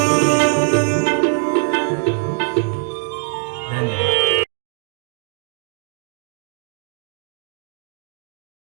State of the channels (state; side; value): silent; left; digital silence